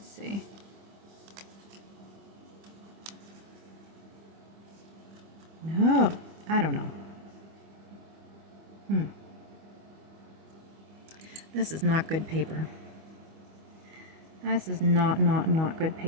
see. I don't know. This is not good paper. This is not good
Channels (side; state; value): left; late; 25 ms